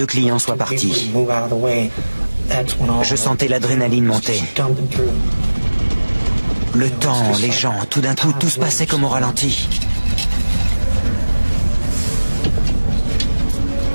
clients soient partis. Je sentais l'adrénaline monter. Le temps, les gens, tout d'un coup, tout se passait comme au ralenti.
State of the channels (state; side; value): inverted; both; correlation -1.00